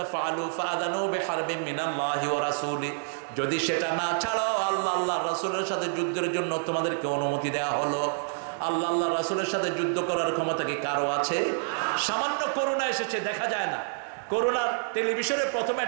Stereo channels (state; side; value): silent; left; digital silence